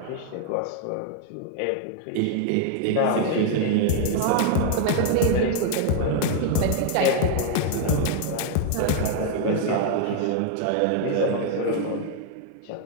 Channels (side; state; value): both; different; correlation 0.00